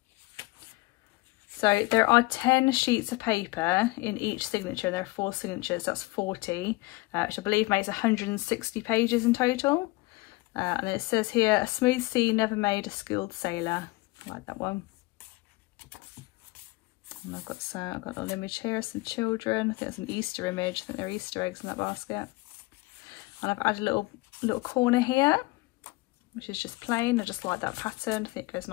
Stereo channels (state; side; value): quieter; right; 22.9 dB